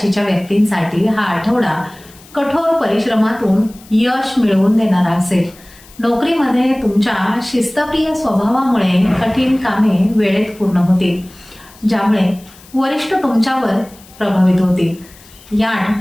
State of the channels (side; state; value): left; noise; hiss, 24 dB below the sound